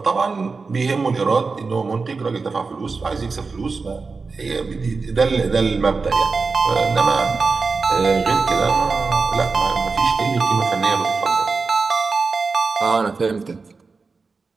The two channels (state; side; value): quieter; left; 4.4 dB